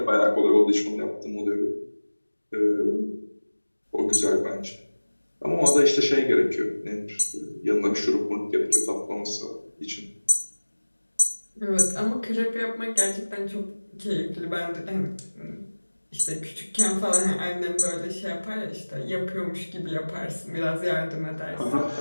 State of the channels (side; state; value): both; inverted; correlation -1.00